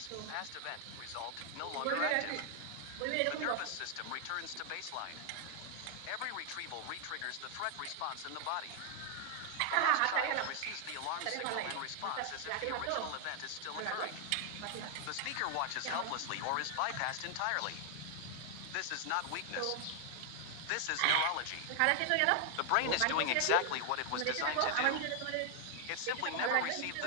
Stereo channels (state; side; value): different; both; correlation 0.00